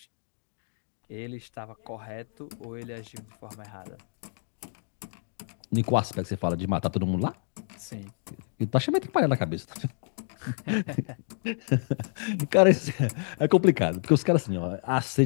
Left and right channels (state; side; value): silent; right; 58 dB below the other